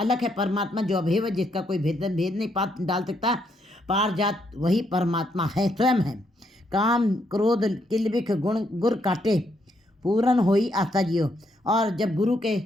है परमात्मा, जो अभेव जिसका कोई भेद नहीं डाल सकता, पारिजात वही परमात्मा है, स्वयं है। काम क्रोध किलबिख गुण गुर काटे पूरन होई आस्था जियो। और जब गुरु के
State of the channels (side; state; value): both; normal; correlation 0.75